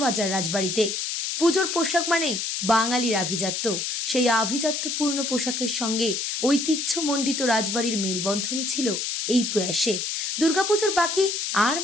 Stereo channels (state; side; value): noise; left; hiss, 2 dB below the sound